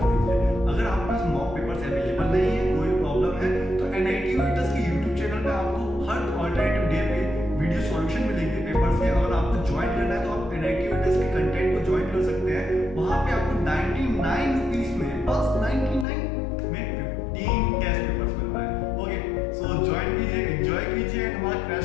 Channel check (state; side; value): drops out; right; at 16.1 s